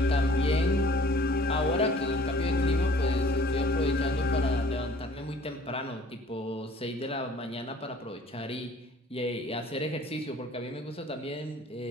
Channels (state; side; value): normal; both; correlation 0.53